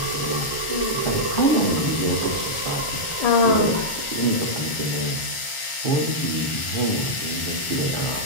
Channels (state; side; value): late; right; 1.4 ms